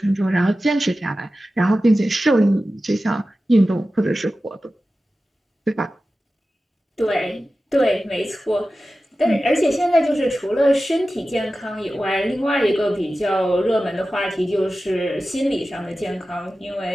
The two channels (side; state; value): both; normal; correlation 0.94